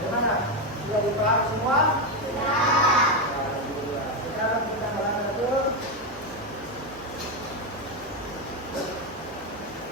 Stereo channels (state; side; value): normal; both; correlation 0.08